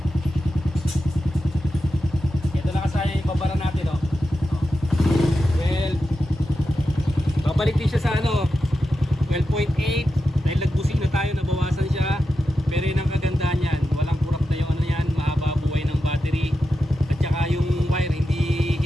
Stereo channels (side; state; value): both; normal; correlation 0.90